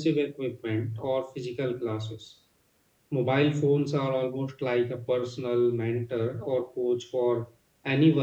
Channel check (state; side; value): identical; both; correlation 1.00